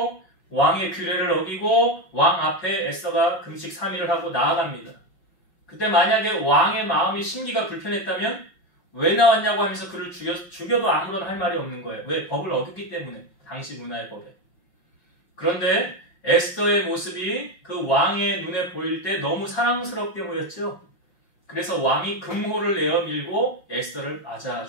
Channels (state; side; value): late; right; 5.7 ms